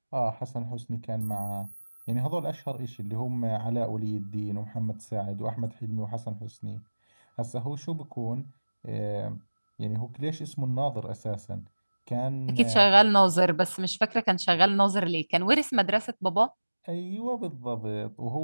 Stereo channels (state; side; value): inverted; both; correlation -1.00